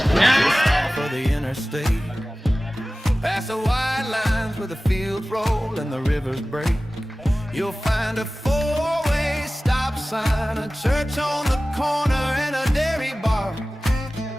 down for the interstate, past the white lines where the fields roll and the rivers break, you'll find a four-way stop sign, a church on the corner, and a dairy bar.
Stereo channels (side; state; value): both; normal; correlation 0.97